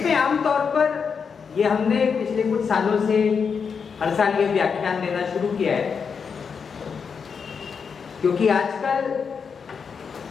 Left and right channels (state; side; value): quieter; right; 6.1 dB